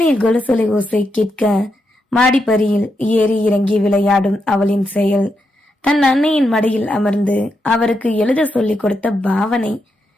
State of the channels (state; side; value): normal; both; correlation 0.83